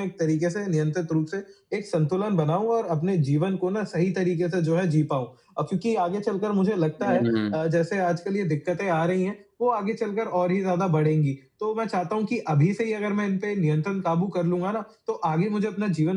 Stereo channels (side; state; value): both; identical; correlation 1.00